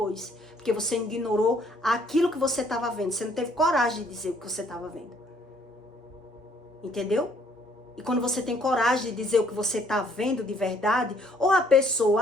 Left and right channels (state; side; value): normal; both; correlation 0.64